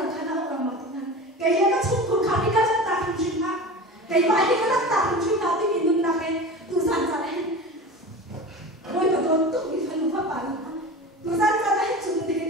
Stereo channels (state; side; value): normal; both; correlation 0.32